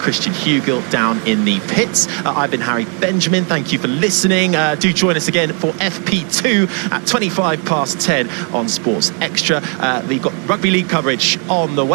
Hugill down in the pits. I've been Harry Benjamin. Thank you for listening. Do join us again for FP2 at 10:25 on Sports Extra. We've got rugby league coverage on the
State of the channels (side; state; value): left; quieter; 39.0 dB